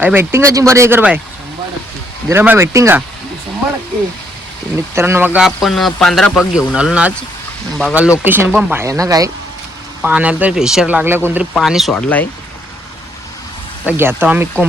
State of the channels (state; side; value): normal; both; correlation 0.70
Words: भेटतील का चिंबोऱ्या जिगर भाई? धीरम भाई भेटतील का? मित्रांनो बघा आपण 15 पग घेऊन आलो ना आज. बघा लोकेशन पण भयानक आहे. पाण्याला तर प्रेशर लागलं, कोणतरी पाणी सोडलं आहे. तर घेतो आम्ही